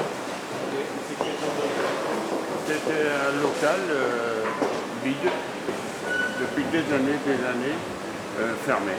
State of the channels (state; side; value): identical; both; correlation 1.00